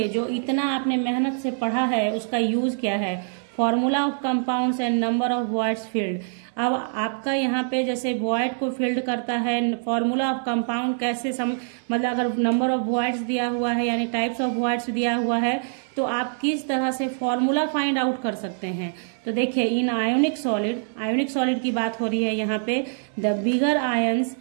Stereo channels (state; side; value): silent; left; 62 dB below the other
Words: जो इतना आपने मेहनत से पढ़ा है उसका यूज क्या है, formula of compounds and number of voids field. अब आपका यहाँ पे जैसे वॉइड को फील्ड करता है, फॉर्मूला ऑफ कंपाउंड कैसे मतलब अगर नंबर ऑफ वॉइड्स दिया हुआ है यानी टाइप्स ऑफ वॉइड्स दिया हुआ है तो आप किस तरह से फॉर्मूला फाइंड आउट कर सकते हैं। तो देखिए, इन आयोनिक सॉलिड की बात हो रही है यहाँ पे, the bigger ions